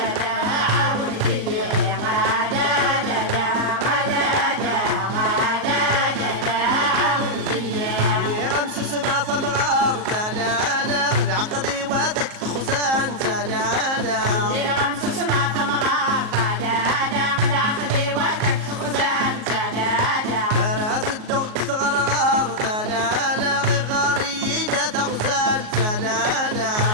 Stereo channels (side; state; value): left; late; 38 ms